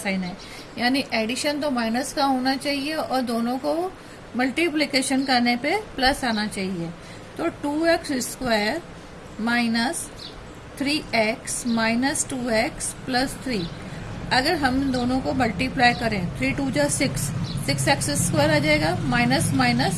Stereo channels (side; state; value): both; identical; correlation 1.00